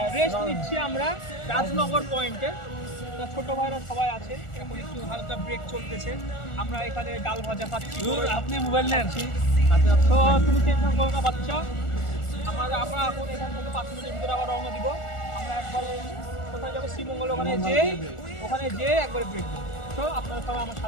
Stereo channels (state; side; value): late; right; 1.4 ms